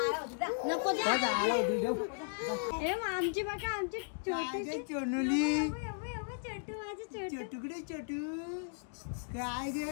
नको दे. ए आमची बघा, आमची छोटीशी चोनुली छोटू, माझं छोटू. चटुकडे चटू. काय गे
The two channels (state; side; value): silent; right; digital silence